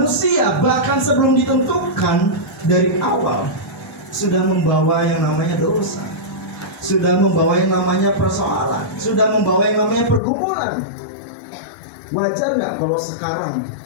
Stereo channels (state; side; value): drops out; right; at 10.2 s